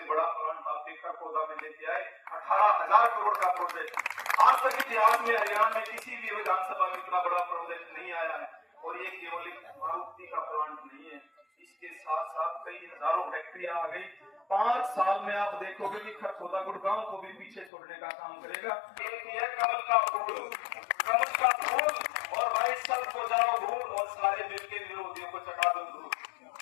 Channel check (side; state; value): right; drops out; at 17.7 s